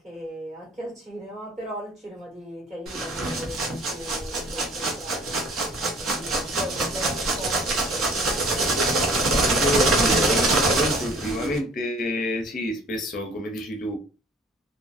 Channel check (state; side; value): normal; both; correlation 0.51